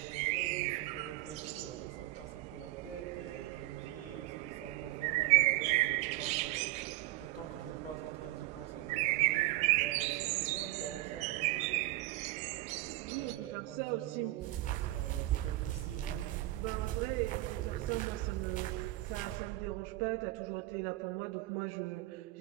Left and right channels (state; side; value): quieter; left; 17.9 dB